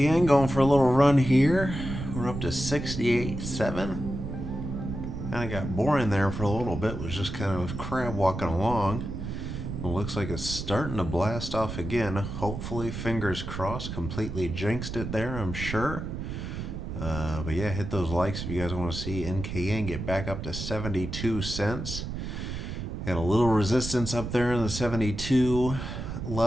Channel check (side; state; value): right; noise; rumble, 6 dB below the sound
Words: going for a little run here. We're up to 68.7. Kind of got boring there for a little bit. Was just kind of crab walking along. It looks like it's starting to blast off again. Hopefully, fingers crossed, completely jinxed it there, I'm sure. But yeah, hit those likes if you guys want to see NKN get back up to 72 cents. Got a little resistance up there in the 72